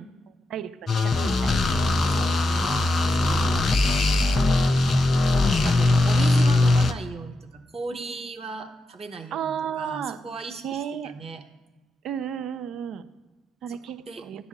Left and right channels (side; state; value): both; normal; correlation 0.87